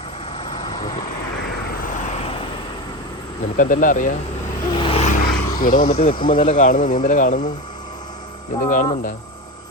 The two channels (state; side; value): normal; both; correlation 0.22